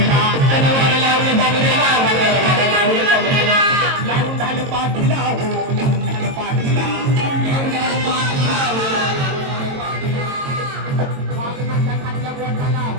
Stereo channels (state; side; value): late; left; 22 ms